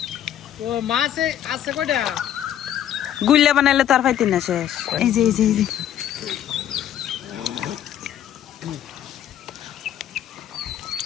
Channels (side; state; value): right; quieter; 10.8 dB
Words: ও মাছ আছে কয়টা গুল্লা বানাইলে তো আর পাইতি না শেষ